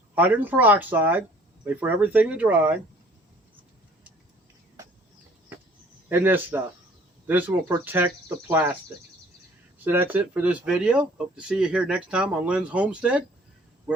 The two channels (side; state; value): both; normal; correlation 0.55